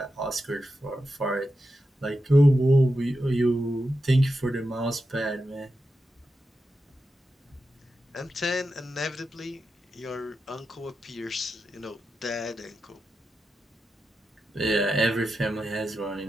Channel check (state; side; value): normal; both; correlation 0.89